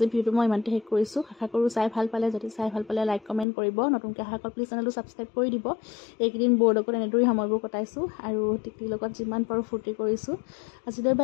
ভিডিঅ'টো মই ইমানতে শেষ কৰিছোঁ আশা কৰোঁ চাই ভাল পালে যদি চাই ভাল পালে লাইক কমেণ্ট কৰিব নতুনকৈ অহা প্লিজ চেনেলটো ছাবস্ক্ৰাইব কৰি দিব এইকেইদিন বৌৰ লগত এনেদৰেই সময়বোৰ কটাইছোঁ আৰু টেকেলিৰ লগত যিমান পাৰোঁ ফূৰ্তি কৰিছোঁ আজিলৈ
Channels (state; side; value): drops out; right; at 3.5 s